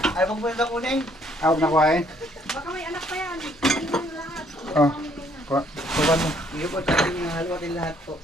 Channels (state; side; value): normal; both; correlation 0.65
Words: Ay, pag pwede kunin. Huwag na kuhain. Baka may anak pa yan. Hindi mo lahat. Oh. Kuha mo. Hindi po, tsaka yung haluatin lahat po.